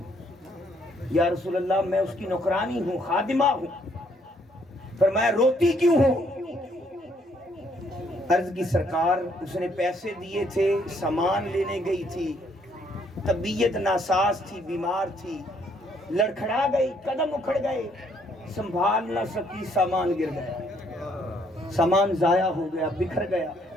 یا رسول اللہ میں اس کی نوکرانی ہوں، خادمہ ہوں۔ فرمایا روتی کیوں ہو؟ عرض کی سرکار اس نے پیسے دیے تھے، سامان لینے گئی تھی، طبیعت ناساز تھی، بیمار تھی، لڑکھڑا گئی، قدم اکھڑ گئے، سنبھال نہ سکی، سامان گر گیا، سامان ضائع ہو گیا، بکھر گیا۔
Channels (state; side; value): normal; both; correlation 0.68